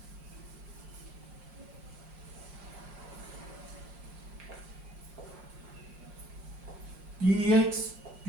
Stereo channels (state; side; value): late; left; 5.6 ms